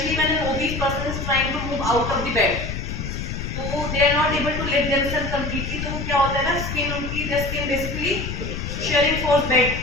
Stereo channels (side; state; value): left; noise; rumble, 5 dB below the sound